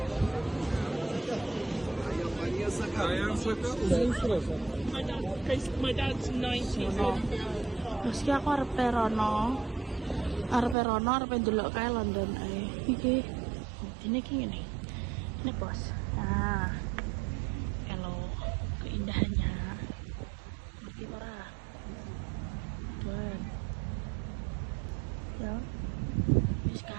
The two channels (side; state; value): left; drops out; at 10.8 s